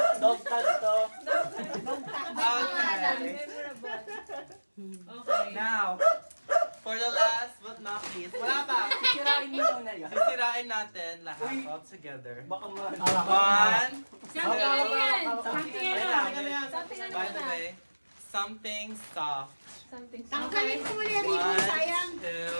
Dog tag to. Okay. Okay. Now, for the last but not least, wala pa. Sisirain mo muna yan. Sisirain natin lahat all together. Baka man. One. Something ano yan? Something Wait ano? lang. something ano By the na? way, something soft. Something. Tanggalin mo muli yung ribbon, sayang. 1,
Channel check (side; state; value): both; inverted; correlation -1.00